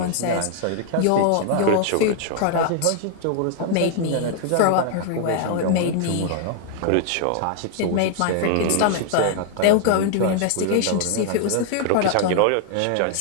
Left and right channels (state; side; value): different; both; correlation 0.00